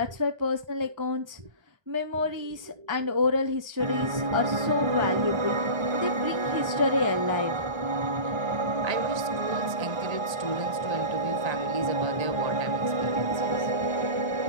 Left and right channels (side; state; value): left; late; 1.3 ms